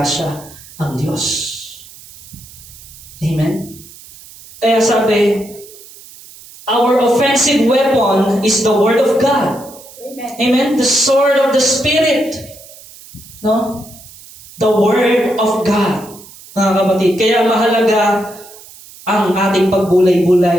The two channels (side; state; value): right; noise; hiss, 20 dB below the sound